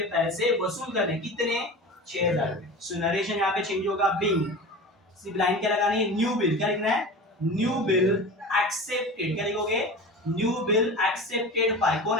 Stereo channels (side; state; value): both; normal; correlation 0.33